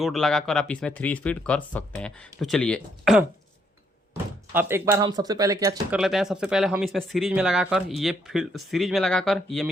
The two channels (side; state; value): both; normal; correlation 0.72